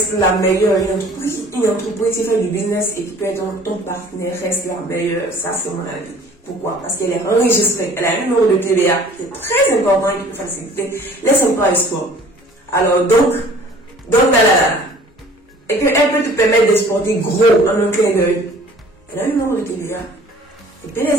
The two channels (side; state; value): both; normal; correlation 0.50